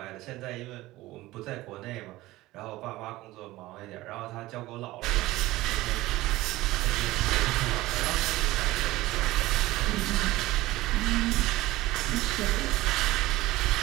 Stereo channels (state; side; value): quieter; left; 18.0 dB